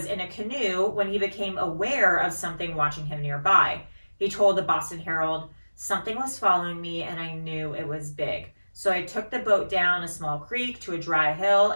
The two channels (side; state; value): both; inverted; correlation -1.00